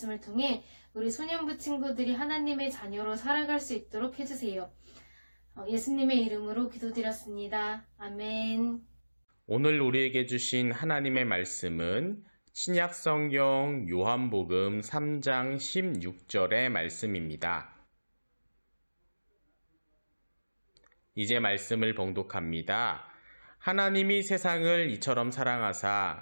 통해 우리 소년부 친구들이 하나님의 자녀로 살아갈 수 있도록 해주세요. 예수님의 이름으로 기도드렸습니다. 아멘. 오늘 우리에게 주신 하나님의 말씀은 신약성경 요한복음 3장 16절의 말씀입니다. 이제 말씀을 봉독합니다. 하나님이 세상을 이처럼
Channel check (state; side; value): inverted; both; correlation -1.00